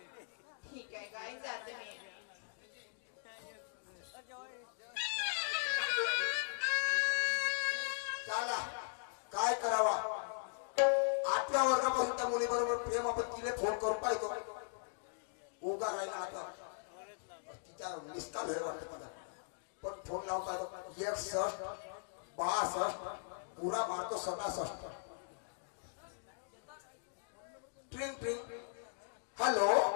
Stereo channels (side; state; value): right; silent; digital silence